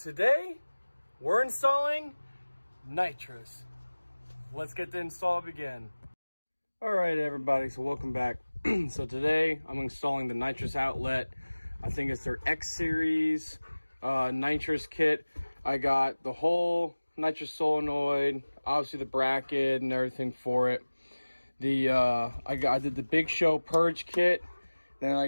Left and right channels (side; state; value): both; inverted; correlation -1.00